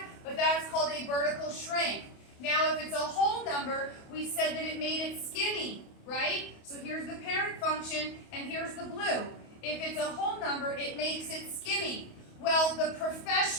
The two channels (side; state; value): right; late; 28 ms